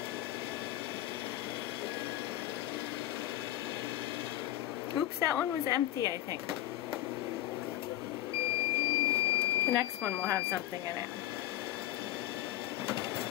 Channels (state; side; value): quieter; right; 13.9 dB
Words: Oops, that one was empty, I think. The next one will have something in it.